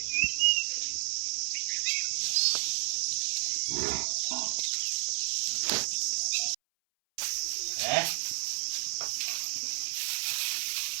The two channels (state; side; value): silent; left; 57 dB below the other